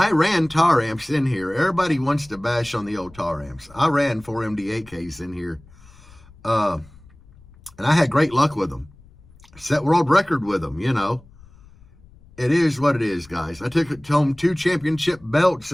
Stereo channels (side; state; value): left; noise; rumble, 25 dB below the sound